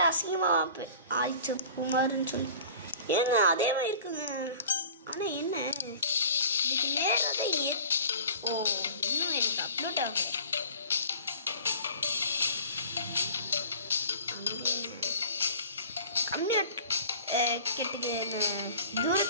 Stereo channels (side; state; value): both; inverted; correlation -0.44